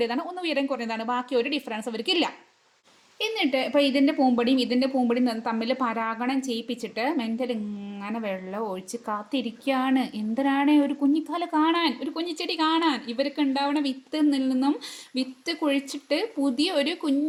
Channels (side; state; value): both; identical; correlation 1.00